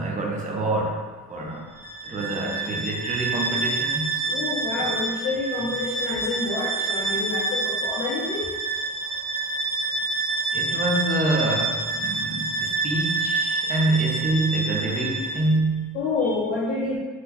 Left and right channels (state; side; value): normal; both; correlation 0.31